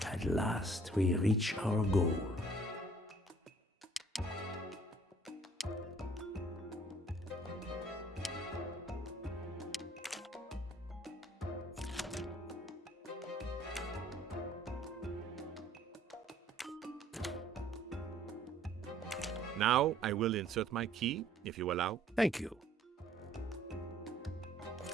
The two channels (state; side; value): normal; both; correlation 0.57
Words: At last, we reach our goal. Now I will insert my key, if you allow. Thank you.